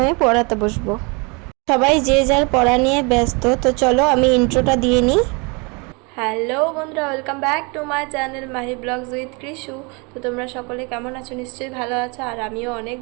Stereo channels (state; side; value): quieter; left; 30.7 dB